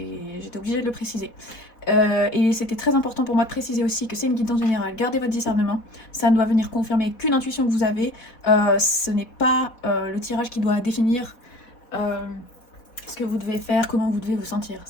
obligée de le préciser. Et c'était très important pour moi de préciser aussi que c'est une guidance générale. Gardez votre discernement, ça ne doit venir confirmer qu'une intuition que vous avez. Ce n'est pas le tirage qui doit définir ce que vous devez faire, comment vous devez vous sentir.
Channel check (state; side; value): late; right; 4.2 ms